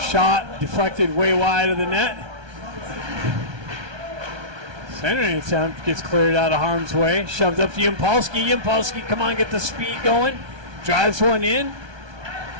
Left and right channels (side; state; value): left; late; 1.2 ms